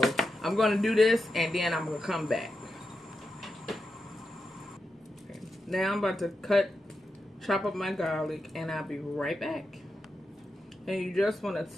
I'm going to do this and then I'm going to come back. Okay. Now I'm about to chop up my garlic and I'll be right back. And you just want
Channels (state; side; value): normal; both; correlation 0.88